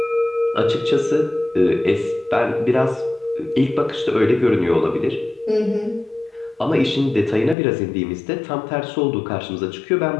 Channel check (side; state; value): right; drops out; at 7.6 s